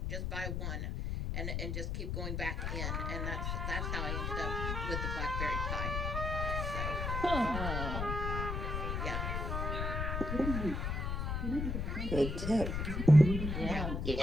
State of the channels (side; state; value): left; noise; rumble, 1 dB below the sound